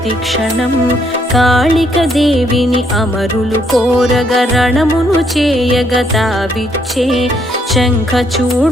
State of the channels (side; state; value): both; normal; correlation 0.72